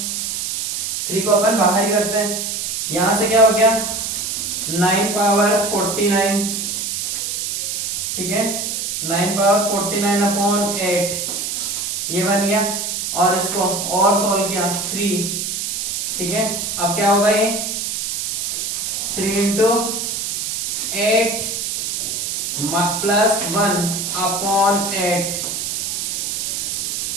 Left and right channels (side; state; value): right; noise; hiss, 2 dB below the sound